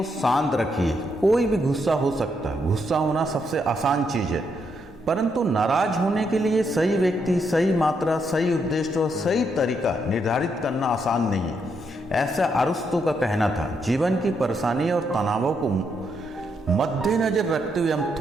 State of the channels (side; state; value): both; normal; correlation 0.78